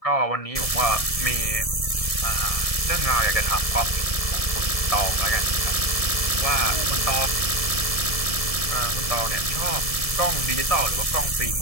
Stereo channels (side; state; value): right; late; 1.7 ms